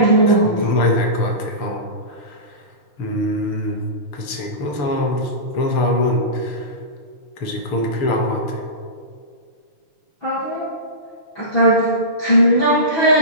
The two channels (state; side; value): late; right; 6.7 ms